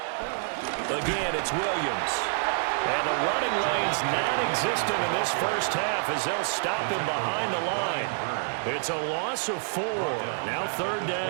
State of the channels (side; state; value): left; silent; digital silence